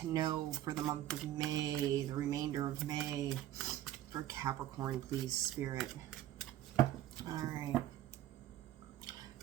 know for the month of May, the remainder of May? For Capricorn, please, Spirit. All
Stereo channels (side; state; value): left; quieter; 13.0 dB